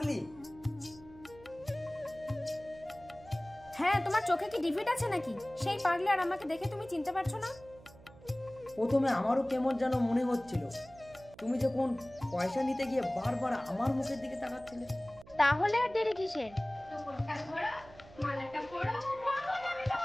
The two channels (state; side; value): noise; right; hum, 21 dB below the sound